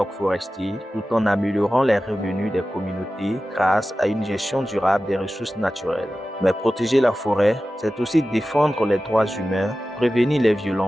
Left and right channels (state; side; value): normal; both; correlation 0.95